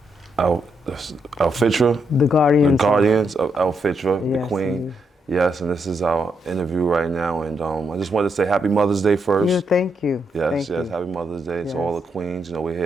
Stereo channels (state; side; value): normal; both; correlation 0.80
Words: AL-FITRA. The Guardians. The Guardians of AL-FITRA, Yes, the Queen. indeed. Yes, and this is our interview right now. And I just wanted to say Happy Mother's Day first. Yeah, thank you. Yes, Thank yes, you. Happy Mother's Day Yes. to all the queens. You know, we're